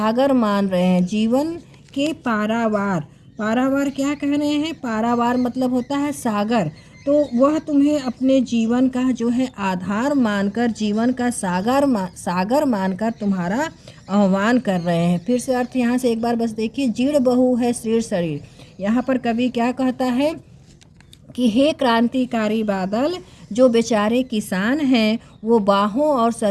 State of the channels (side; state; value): both; identical; correlation 1.00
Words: मान रहे हैं, जीवन के पारावार। पारावार क्या कह रहे हैं? पारावार मतलब होता है सागर। तो वह तुम्हें अपने जीवन का जो है आधार मानकर, जीवन का सागर मानकर तुम्हारा आह्वान कर रहे हैं। फिर से अर्थ यहाँ से एक बार बस देखिए, जीर्ण बहू है शीर्ण शरीर। यहाँ पर कवि क्या कहता है कि हे क्रांतिकारी बादल, जो बेचारे किसान हैं वो बाहों और